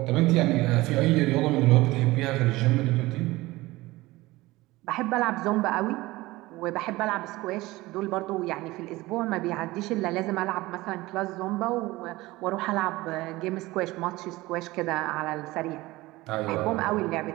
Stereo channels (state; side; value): quieter; left; 19.6 dB